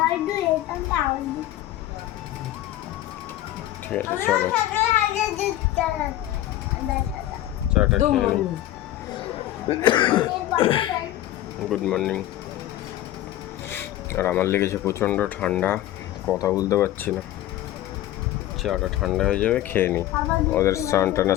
দুধ, এইখানটা আমার দুধ। ঠিক আছে চলো চাটা খেয়ে নিই। Good morning. আর আমার লেগেছে প্রচণ্ড ঠান্ডা, কথা বলতে পারছি না। চাটা ঠান্ডা হয়ে যাবে, খেয়ে নিই। ওদের স্নান টান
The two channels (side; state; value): right; quieter; 13.9 dB